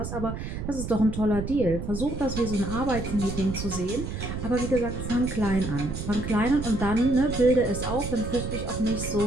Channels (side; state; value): right; noise; rumble, 6 dB below the sound